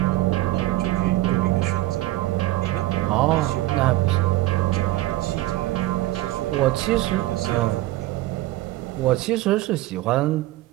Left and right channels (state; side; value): quieter; left; 16.8 dB